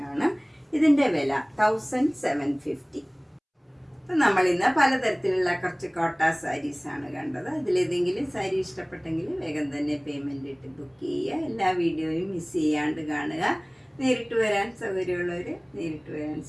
ഇതിൻ്റെ വില 1750. അപ്പം നമ്മളിന്ന് പലതരത്തിലുള്ള കുറച്ച് കോട്ട സാരീസാണ് കണ്ടത്. അതിലേതെങ്കിലും സാരി ഇഷ്ടപ്പെട്ടെങ്കിൽ വേഗം തന്നെ പേയ്മെൻ്റ് ഇട്ട് ബുക്ക് ചെയ്യുക. എല്ലാ വീഡിയോയും മിസ് ചെയ്യാണ്ട് കാണുക. നേരിട്ട് വരാൻ സൗകര്യമുള്ളവർ നേരിട്ട് വരാൻ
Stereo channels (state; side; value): identical; both; correlation 1.00